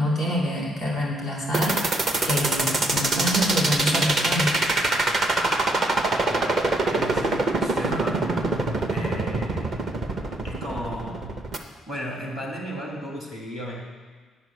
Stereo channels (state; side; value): normal; both; correlation 0.72